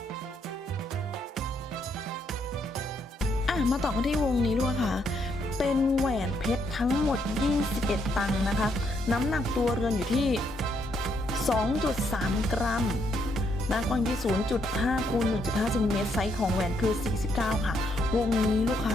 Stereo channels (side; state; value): both; normal; correlation 0.74